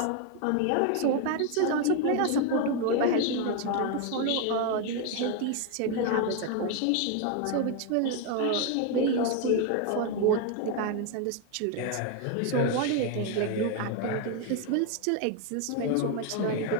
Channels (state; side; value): different; both; correlation 0.01